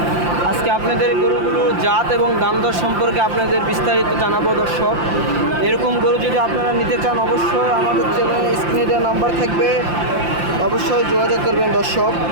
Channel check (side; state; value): left; late; 5.8 ms